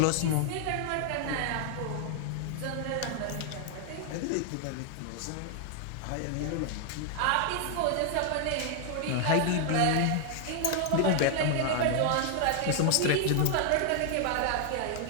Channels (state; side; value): different; both; correlation 0.00